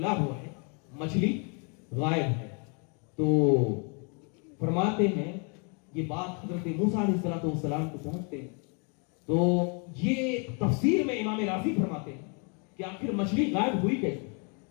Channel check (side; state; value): right; quieter; 36.8 dB